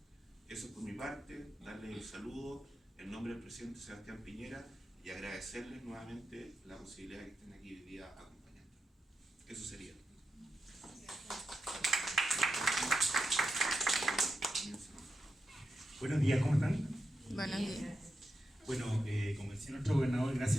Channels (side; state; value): both; normal; correlation 0.87